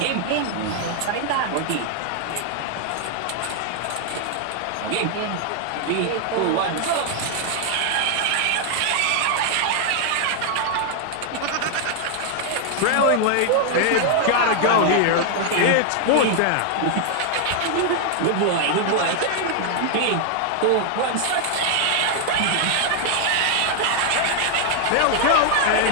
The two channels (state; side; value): different; both; correlation 0.00